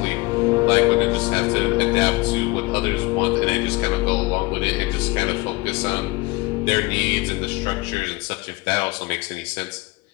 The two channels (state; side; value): quieter; right; 22.9 dB